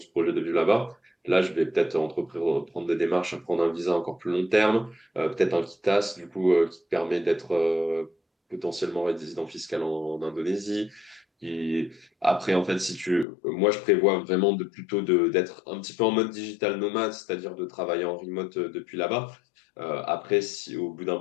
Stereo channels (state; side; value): drops out; right; at 13.2 s